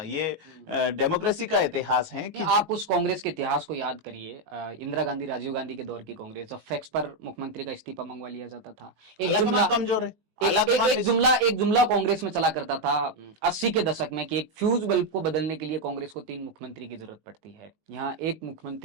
ये डेमोक्रेसी का इतिहास है कि आप उस कांग्रेस के इतिहास को याद करिए, इंदिरा गांधी, राजीव गांधी के दौर की कांग्रेस, जब फैक्स पर मुख्यमंत्री का इस्तीफा मंगवा लिया जाता था, एक जुमला कमजोर है, एक जुमला कांग्रेस में चला करता था 80 के दशक में कि एक फ्यूज बल्ब को बदलने के लिए कांग्रेस को 3 मुख्यमंत्री की जरूरत पड़ती है। यहाँ एक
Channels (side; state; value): left; late; 19 ms